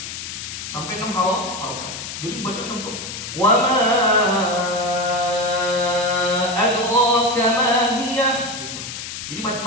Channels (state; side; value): noise; left; hiss, 8 dB below the sound